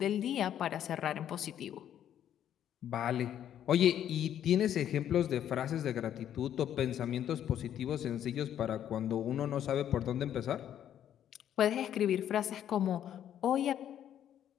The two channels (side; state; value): right; quieter; 10.4 dB